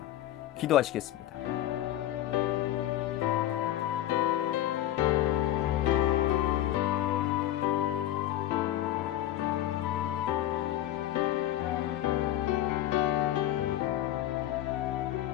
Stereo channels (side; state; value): right; quieter; 13.2 dB